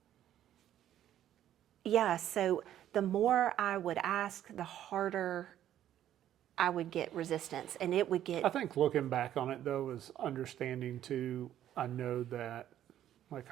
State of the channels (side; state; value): left; quieter; 11.5 dB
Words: so the more I would ask, the harder I would get resistance, and it would get. I think looking back on it though is understanding too. I know that like